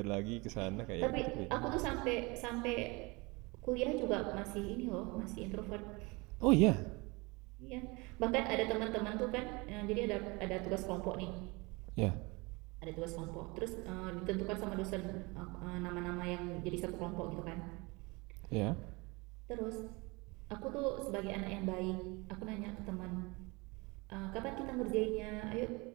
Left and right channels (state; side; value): quieter; left; 25.9 dB